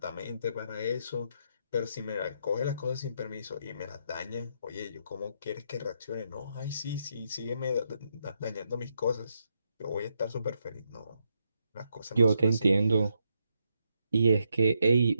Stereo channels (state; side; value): inverted; both; correlation -0.79